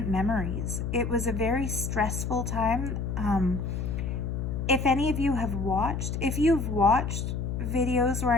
memories. It was a very stressful time. If any of you have watched, if you've watched videos where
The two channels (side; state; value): left; noise; hum, 3 dB below the sound